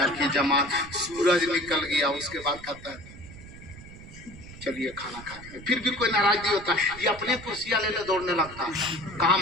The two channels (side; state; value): right; noise; rumble, 17 dB below the sound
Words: की जमात, सूरज निकल गया। उसके बाद कहता है चलिए खाना खाते हैं। फिर भी कोई नाराज नहीं होता, ये अपने कुर्सियां लेने दौड़ने लगता है। कहाँ